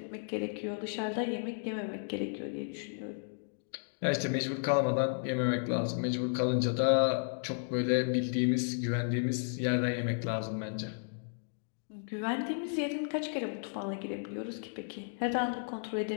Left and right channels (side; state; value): right; silent; digital silence